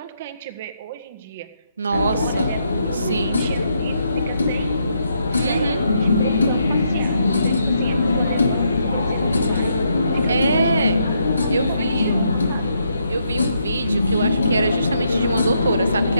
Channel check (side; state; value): both; inverted; correlation -0.76